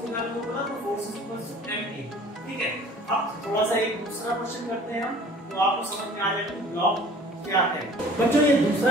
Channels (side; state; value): both; normal; correlation 0.49